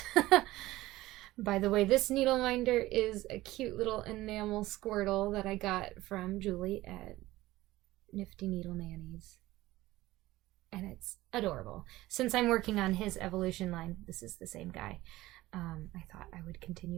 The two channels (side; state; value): left; quieter; 17.4 dB